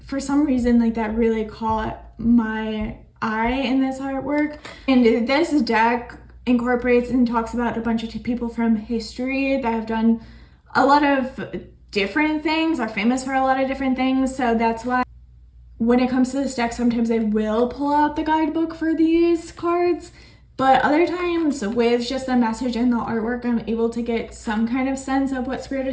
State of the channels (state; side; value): identical; both; correlation 1.00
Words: For some reason, like that really caught my eye in this artwork. And this deck incorporates and talks about a bunch of people from history that have done a lot of different things, are famous for a lot of different things. So that's why when it comes to this deck, sometimes I will pull out the guidebook for these cards, But other times with just the message and the artwork, I'm able to get some kind of sense of what Spirit